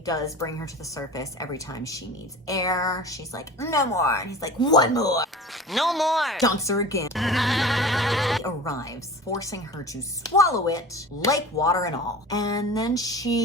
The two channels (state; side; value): normal; both; correlation 0.37